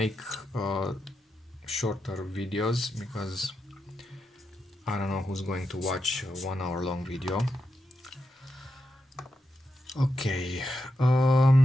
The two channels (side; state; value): both; normal; correlation 0.86